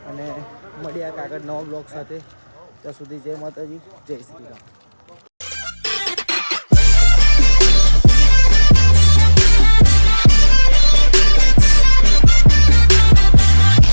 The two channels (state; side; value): inverted; both; correlation -1.00